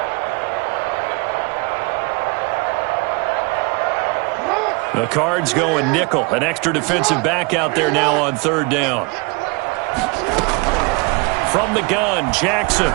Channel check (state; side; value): quieter; left; 28.6 dB